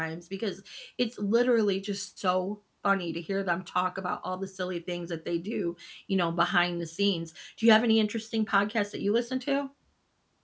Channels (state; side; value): identical; both; correlation 1.00